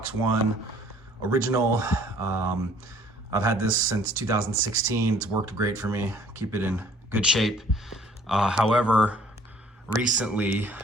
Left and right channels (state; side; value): normal; both; correlation 0.57